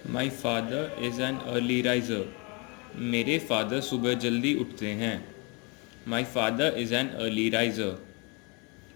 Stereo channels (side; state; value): right; quieter; 30.4 dB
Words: My father is an early riser. मेरे father सुबह जल्दी उठते हैं. My father is an early riser.